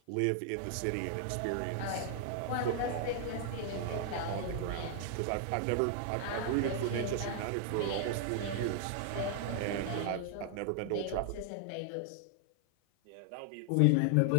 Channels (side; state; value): both; different; correlation 0.00